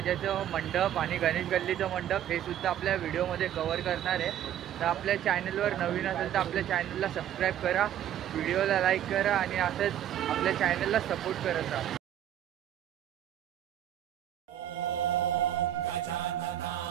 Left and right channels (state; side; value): quieter; left; 11.1 dB